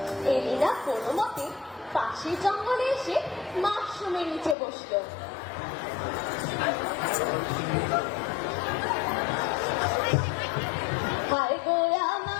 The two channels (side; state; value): right; drops out; at 4.5 s